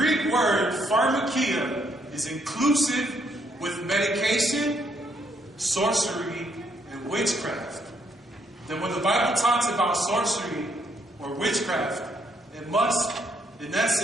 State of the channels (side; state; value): both; normal; correlation 0.72